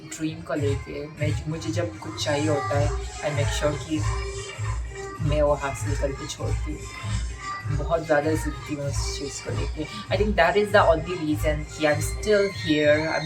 को लेके। मैं मुझे जब कुछ चाहिए होता है आई मेक श्योर कि मैं वो हासिल करके छोड़ती हूँ। बहुत ज़्यादा ज़िद्दी हूँ इस चीज़ को लेके। I think that is the only reason कि I am still here, I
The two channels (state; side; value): identical; both; correlation 1.00